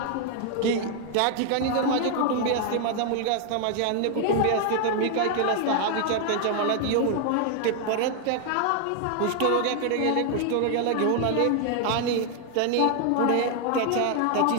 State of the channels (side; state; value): both; different; correlation 0.00